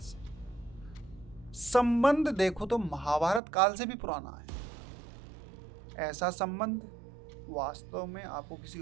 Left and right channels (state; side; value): drops out; left; at 3.4 s